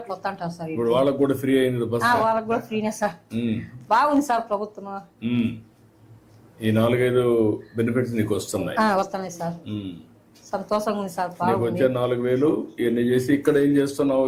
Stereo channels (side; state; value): both; identical; correlation 1.00